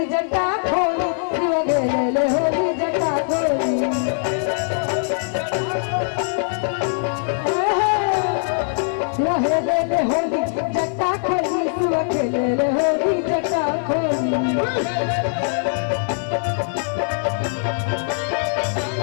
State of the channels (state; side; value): silent; right; 60 dB below the other